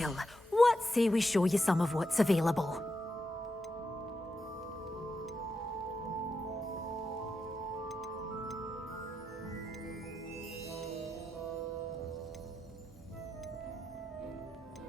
what say we show you some of what's available?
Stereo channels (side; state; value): both; normal; correlation 0.86